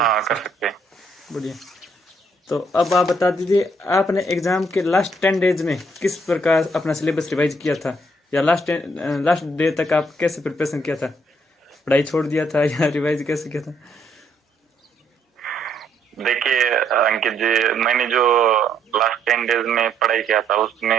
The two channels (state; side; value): normal; both; correlation 0.70